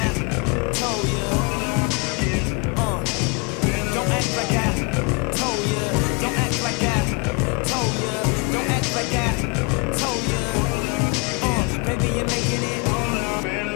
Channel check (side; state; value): right; quieter; 30.7 dB